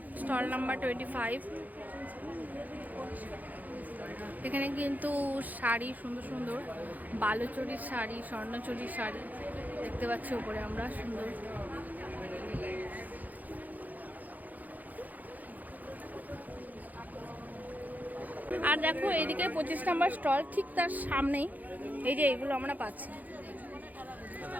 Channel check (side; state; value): left; late; 0.081 ms